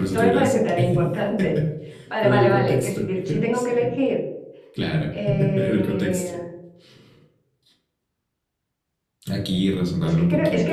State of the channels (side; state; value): both; identical; correlation 1.00